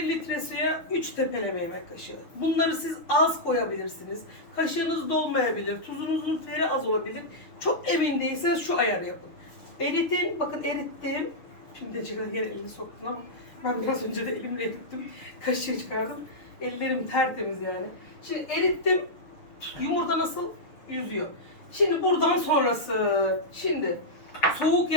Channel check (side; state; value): right; late; 6.6 ms